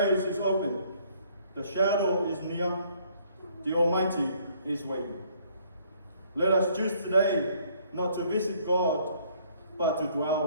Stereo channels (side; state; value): both; inverted; correlation -0.63